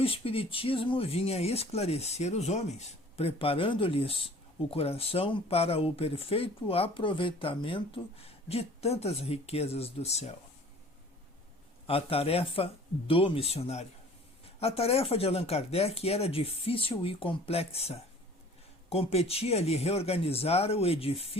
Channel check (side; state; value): both; normal; correlation 0.49